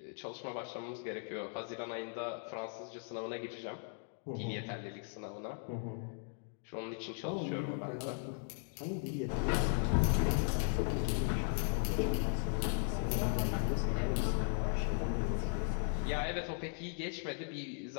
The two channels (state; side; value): silent; right; 53 dB below the other